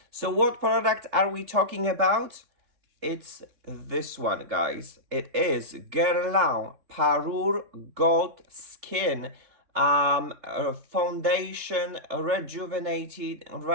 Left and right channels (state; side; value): late; left; 3.6 ms